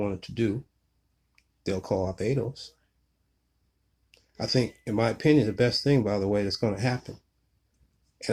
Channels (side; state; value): both; identical; correlation 1.00